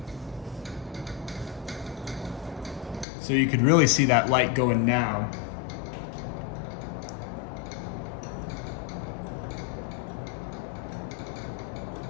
So you could really see that light going now.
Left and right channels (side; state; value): right; drops out; at 3.1 s